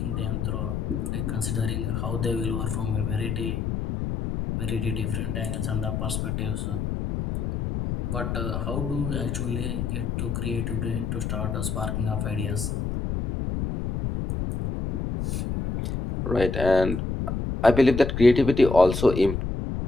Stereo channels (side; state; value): left; noise; rumble, 2 dB below the sound